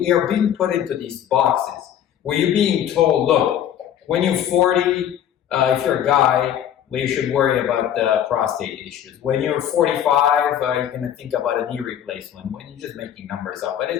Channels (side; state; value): right; quieter; 10.1 dB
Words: are being put into these boxes where you're being told, look, when you're 40, if you're a guy, you should worry about prostate issues. When you're 45, you're going to think about a knee replacement. When you're just making numbers up, but